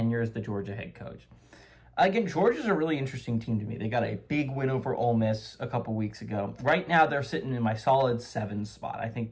as the Georgia head coach. Again, Georgia's a really interesting team to me. They got a big win over Ole Miss a couple weeks ago. Right now, they're sitting in my solid 7 spot. I think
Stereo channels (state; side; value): identical; both; correlation 1.00